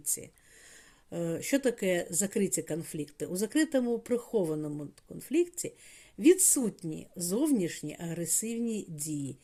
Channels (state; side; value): identical; both; correlation 1.00